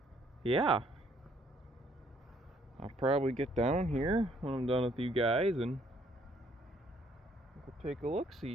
yeah. I'll probably get down here when I'm done with you guys and we'll take a look,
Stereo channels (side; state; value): both; normal; correlation 0.65